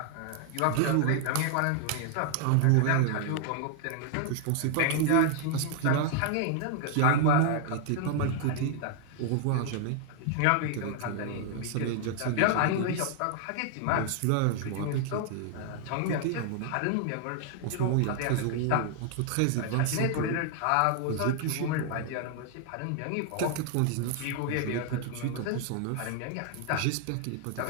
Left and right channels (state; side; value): different; both; correlation 0.00